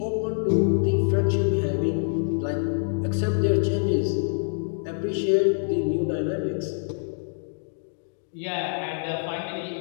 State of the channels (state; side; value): silent; right; digital silence